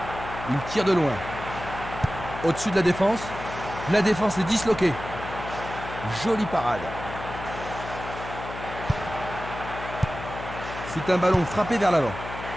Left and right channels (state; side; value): noise; left; hum, 10 dB below the sound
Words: Il tire de loin. Au-dessus de la défense. La défense est disloquée. Jolie parade. C'est un ballon frappé vers l'avant.